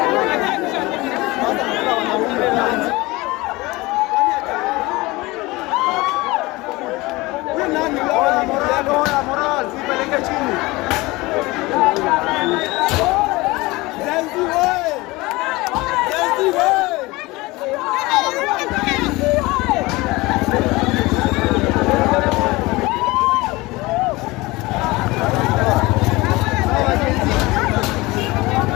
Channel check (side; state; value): right; quieter; 21.7 dB